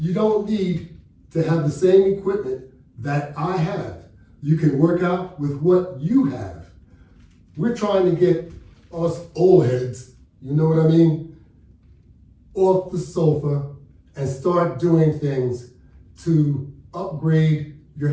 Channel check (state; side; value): identical; both; correlation 1.00